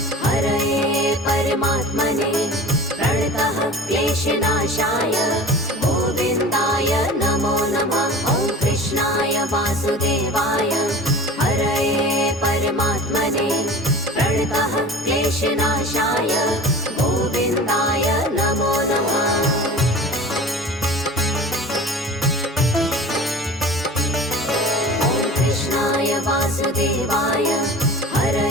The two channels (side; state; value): both; normal; correlation 0.38